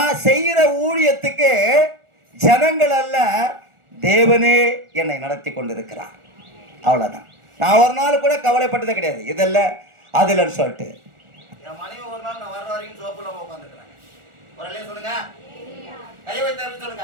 செய்கிற ஊழியத்துக்கு ஜனங்கள் அல்ல, தேவனே என்னை நடத்தி கொண்டிருக்கிறார். அவ்வளவுதான். நான் ஒரு நாள் கூட கவலைப்பட்டதே கிடையாது, இதல்ல அதுலன்னு சொல்லிட்டு. என் மனைவி ஒரு நாள் நான் வர்ற வரைக்கும் சோப்புல உட்காந்துருக்கிறாங்க. ஒரு அல்லேலூயா சொல்லுங்க. கை வைத்து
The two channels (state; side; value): late; left; 1.4 ms